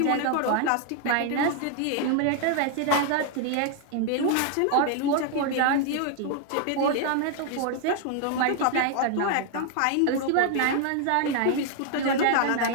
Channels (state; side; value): different; both; correlation 0.00